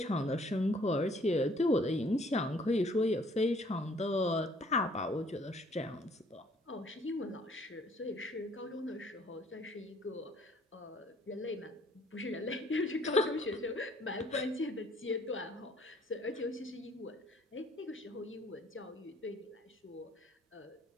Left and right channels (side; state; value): both; normal; correlation 0.60